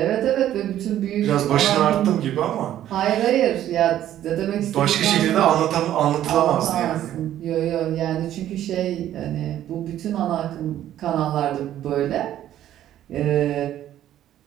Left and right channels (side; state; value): left; quieter; 12.0 dB